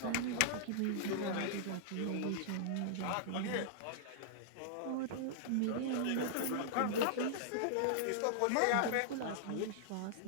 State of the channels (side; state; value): both; different; correlation -0.01